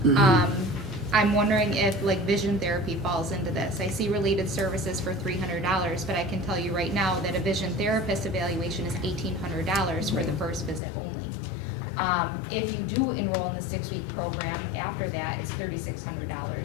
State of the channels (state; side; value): drops out; right; at 10.8 s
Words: I'm wondering if like vision therapy falls into this. I see related services for $300, but I can tell you right now that a vision therapist evaluation is $1,800 for the first visit only. If you do enroll in the 6-week program, after that, it's